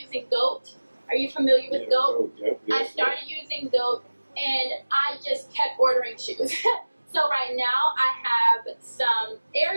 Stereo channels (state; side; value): inverted; both; correlation -1.00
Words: GOAT. Are you familiar with GOAT? Yep. I started using GOAT and I just kept ordering shoes. So right now I have some